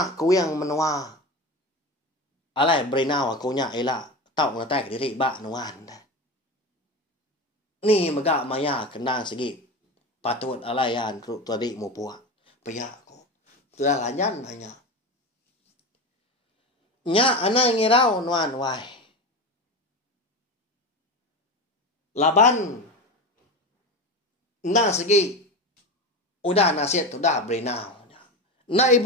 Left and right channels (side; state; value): both; normal; correlation 0.24